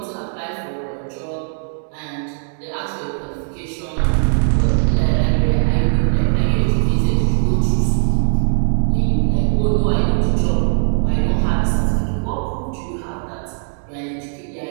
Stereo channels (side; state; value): left; silent; digital silence